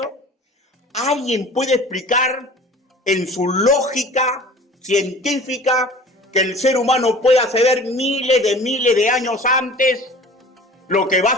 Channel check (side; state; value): both; normal; correlation 0.43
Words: ¿Alguien puede explicar en su lógica científica que el ser humano pueda saber miles de años antes lo que va a